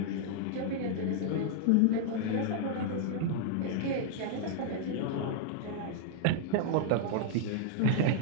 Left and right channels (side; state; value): both; different; correlation -0.01